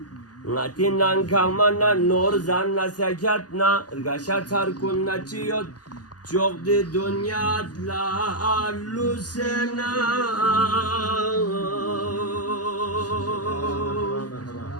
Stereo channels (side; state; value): right; late; 0.69 ms